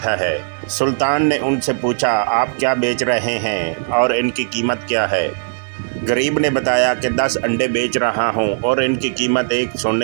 है। सुल्तान ने उनसे पूछा, आप क्या बेच रहे हैं और इनकी कीमत क्या है? गरीब ने बताया कि 10 अंडे बेच रहा हूं और इनकी कीमत एक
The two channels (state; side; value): silent; left; digital silence